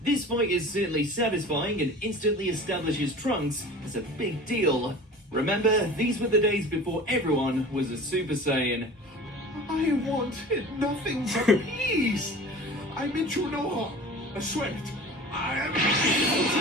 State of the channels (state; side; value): normal; both; correlation 0.39